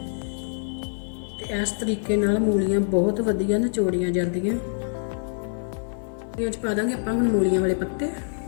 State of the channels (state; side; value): silent; right; digital silence